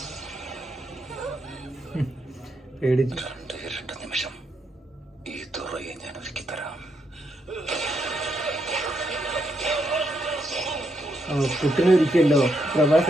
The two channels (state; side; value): normal; both; correlation 0.79